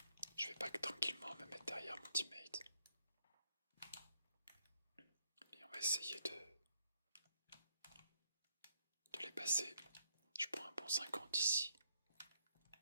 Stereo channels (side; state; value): both; inverted; correlation -0.72